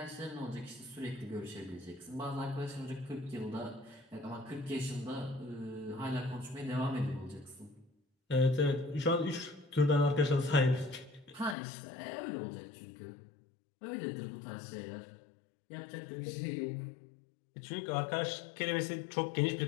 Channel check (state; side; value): drops out; right; at 11.6 s